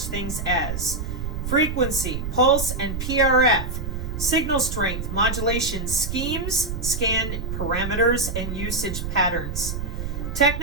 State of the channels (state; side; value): noise; right; rumble, 4 dB below the sound